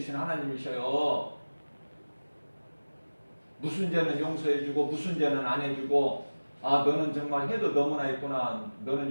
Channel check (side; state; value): both; inverted; correlation -1.00